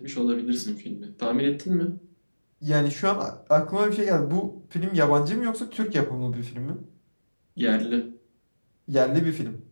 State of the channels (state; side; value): inverted; both; correlation -1.00